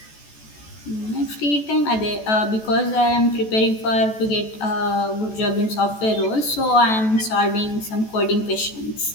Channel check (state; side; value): late; right; 14 ms